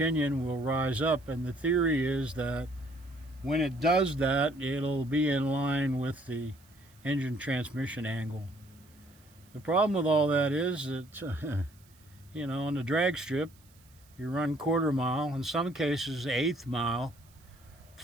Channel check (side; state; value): right; noise; hiss, 29 dB below the sound